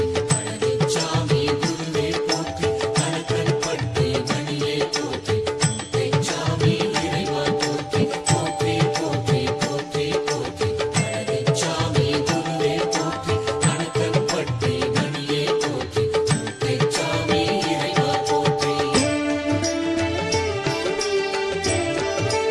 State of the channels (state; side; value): identical; both; correlation 1.00